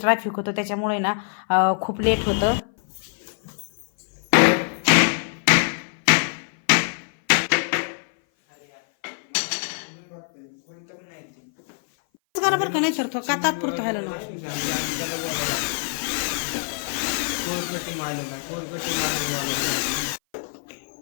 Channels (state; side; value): silent; right; 57 dB below the other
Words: होतं, त्याच्यामुळे ना खूप लेट होतं. बरोबर का नाही सर, तो का तात्पुरतं व्हायला ना.